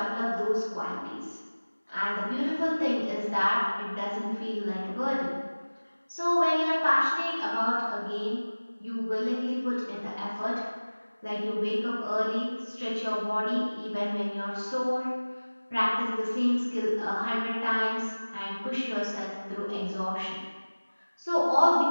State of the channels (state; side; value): inverted; both; correlation -1.00